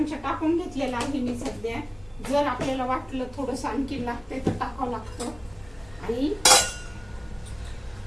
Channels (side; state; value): left; noise; rumble, 24 dB below the sound